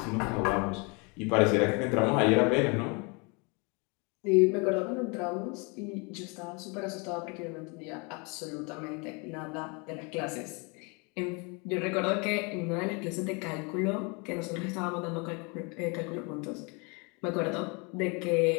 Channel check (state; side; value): quieter; right; 31.4 dB